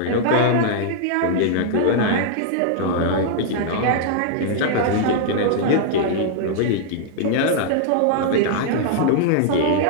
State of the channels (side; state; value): both; different; correlation -0.01